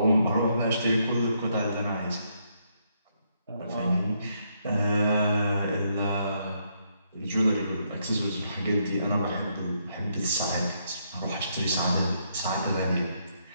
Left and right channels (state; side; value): inverted; both; correlation -0.75